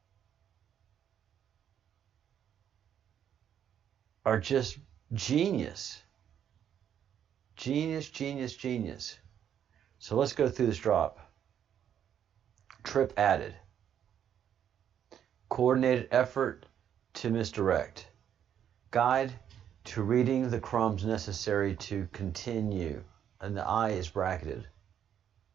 are just genius. Genius, genius, genius. So let's go through this drop. Trip added. Coordinated effort to misdirect. Guide to reading the crumbs necessary to continue. And the I is bracketed.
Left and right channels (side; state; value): left; quieter; 9.3 dB